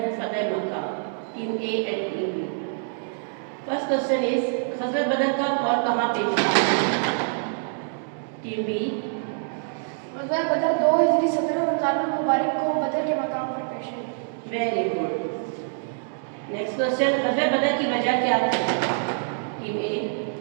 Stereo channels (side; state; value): left; silent; digital silence